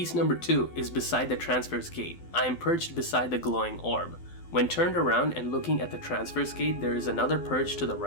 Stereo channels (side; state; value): right; late; 12 ms